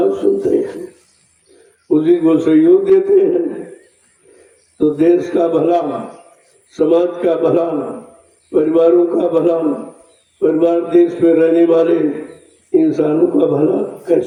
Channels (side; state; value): both; identical; correlation 1.00